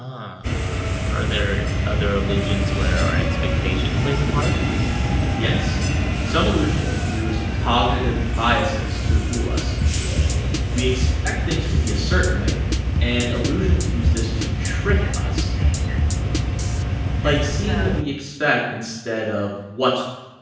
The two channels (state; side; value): identical; both; correlation 1.00